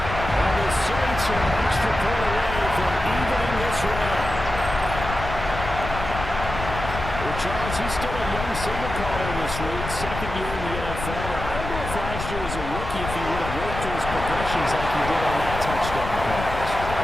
And the Saints are an extra point away from evening this round. Well, Charles, he's still a young signal caller in this league, second year in the NFL. I don't know if last year as a rookie if he would have worked through his progressions like he did on that touchdown pass. I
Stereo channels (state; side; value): noise; left; rumble, 7 dB below the sound